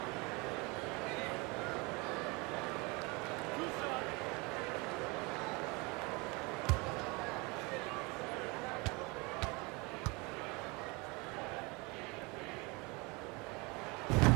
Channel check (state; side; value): quieter; left; 27.2 dB